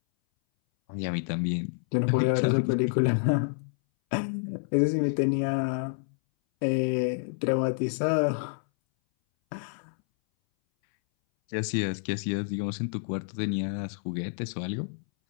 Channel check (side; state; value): right; silent; 59 dB below the other